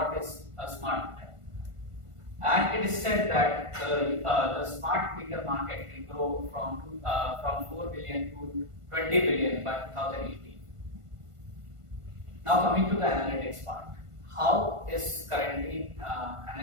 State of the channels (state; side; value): late; left; 1.5 ms